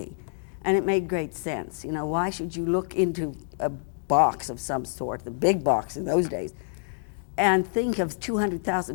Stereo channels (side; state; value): right; silent; digital silence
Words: and it made great sense. You know, why should you look into a box of some sort, the big box in those days, and think of